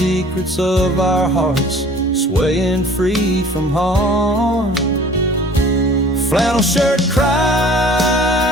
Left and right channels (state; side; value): normal; both; correlation 0.49